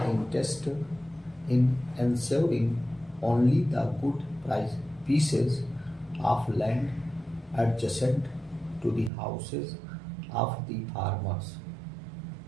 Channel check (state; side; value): drops out; left; at 9.1 s